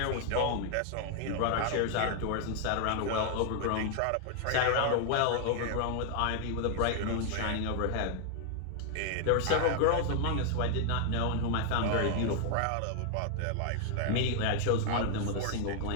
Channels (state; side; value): different; both; correlation 0.00